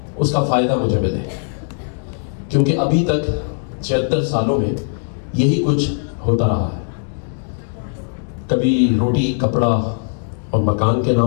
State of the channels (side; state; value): right; silent; digital silence